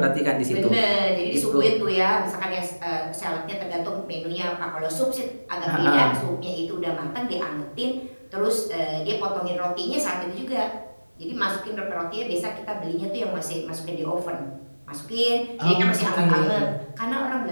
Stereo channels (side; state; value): both; inverted; correlation -1.00